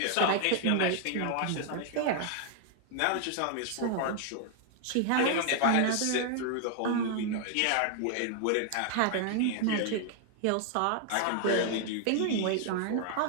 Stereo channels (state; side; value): different; both; correlation 0.00